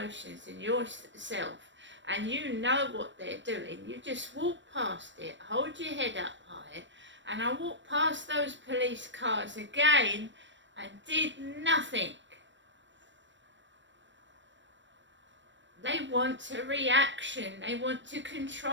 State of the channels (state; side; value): late; left; 0.53 ms